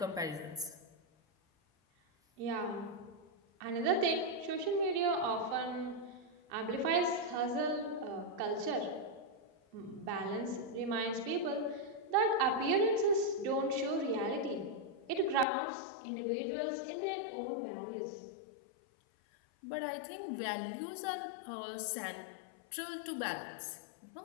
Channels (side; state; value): right; drops out; at 15.5 s